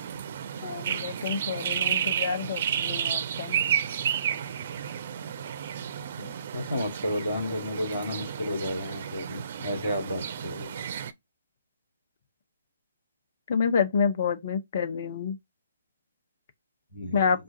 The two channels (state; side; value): inverted; both; correlation -0.63